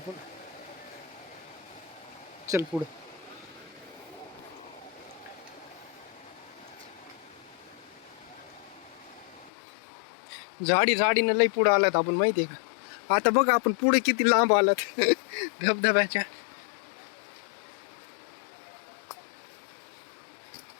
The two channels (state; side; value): drops out; right; at 9.5 s